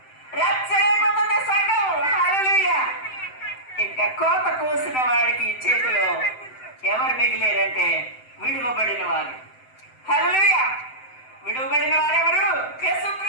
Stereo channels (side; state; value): right; late; 7.8 ms